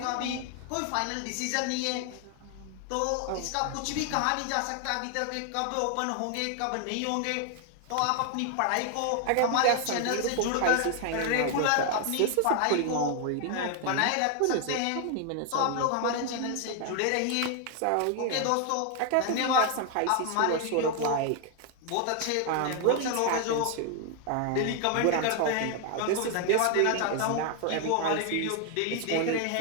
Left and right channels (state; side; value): different; both; correlation 0.00